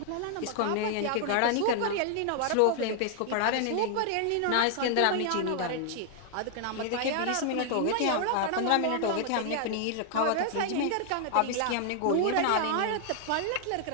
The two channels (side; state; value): both; different; correlation 0.00